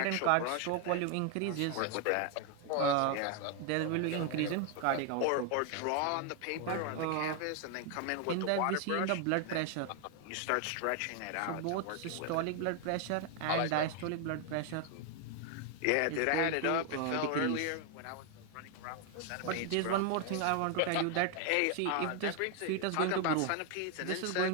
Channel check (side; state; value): both; different; correlation 0.01